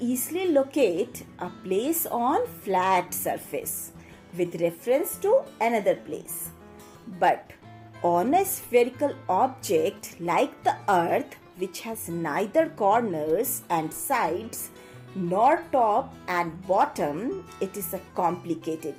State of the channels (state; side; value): identical; both; correlation 1.00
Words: locate a place on flat surface with reference to another place. But on a spherical object like the Earth, which has neither corners and sides nor top and bottom, it is a complicated